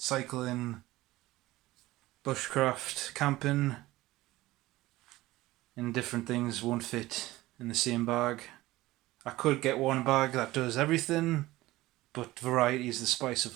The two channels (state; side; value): quieter; left; 17.8 dB